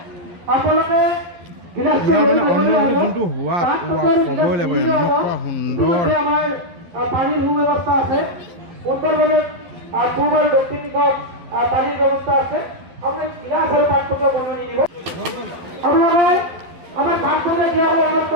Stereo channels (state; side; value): late; left; 11 ms